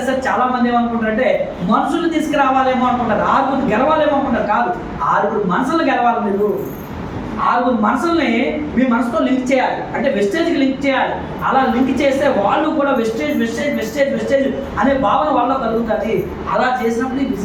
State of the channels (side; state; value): both; identical; correlation 1.00